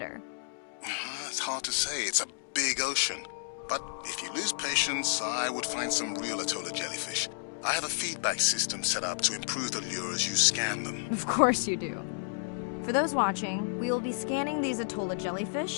It's hard to say. It's a big ocean. But if you lose patience, I would find some real Atola jellyfish. I have a feedback system set up to improve the lure as you scan them. Of course you do. For those watching, we will be scanning these Atola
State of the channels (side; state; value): right; silent; digital silence